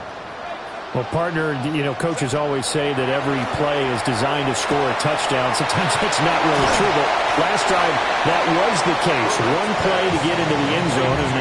Well, partner, you know, coaches always say that every play is designed to score a touchdown. Sometimes that's not really true, but last drive, that was the case. One play to get into the end zone, and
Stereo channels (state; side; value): identical; both; correlation 1.00